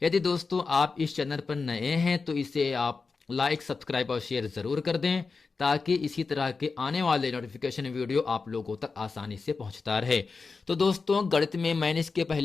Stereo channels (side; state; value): right; quieter; 4.5 dB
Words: यदि दोस्तों आप इस चैनल पर नए हैं तो इसे आप लाइक सब्सक्राइब और शेयर ज़रूर कर दें, ताकि इसी तरह के आने वाले नोटिफिकेशन वीडियो आप लोगों तक आसानी से पहुंचता रहे। तो दोस्तों गणित में मैंने इसके